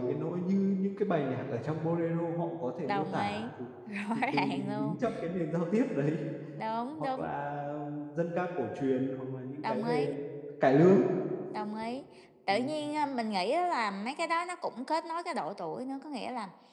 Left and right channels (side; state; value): both; identical; correlation 1.00